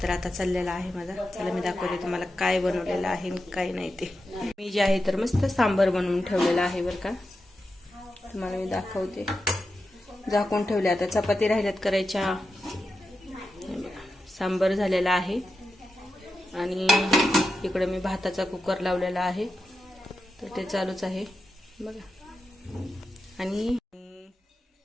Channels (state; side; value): normal; both; correlation 0.89